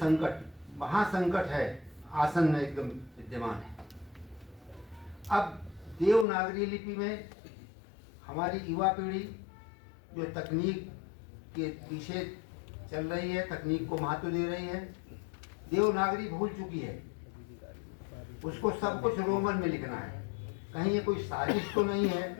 महासंकट है, आसन्न एकदम विद्यमान है। अब देवनागरी लिपि में हमारी युवा पीढ़ी जो तकनीक के पीछे चल रही है, तकनीक को महत्व दे रही है, देवनागरी भूल चुकी है। उसको सब कुछ रोमन में लिखना है। कहीं ये कोई साजिश तो नहीं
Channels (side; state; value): right; drops out; at 6.2 s